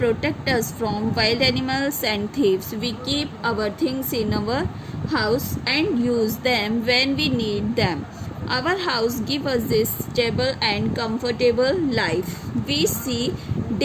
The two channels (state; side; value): identical; both; correlation 1.00